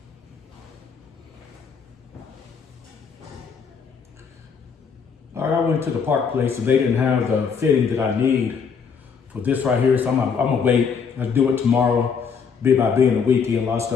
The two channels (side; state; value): right; quieter; 6.2 dB